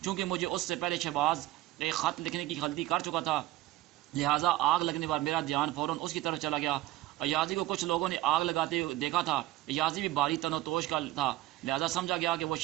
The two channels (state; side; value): quieter; left; 16.2 dB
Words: چونکہ مجھے اس سے پہلے شہباز ایک خط لکھنے کی غلطی کر چکا تھا، لہٰذا آگ لگنے پر میرا دھیان فوراً اس کی طرف چلا گیا. ایازی کو کچھ لوگوں نے آگ لگاتے دیکھا تھا. ایازی بھی باری تن و توش کا تھا، لہٰذا سمجھا گیا کہ وہ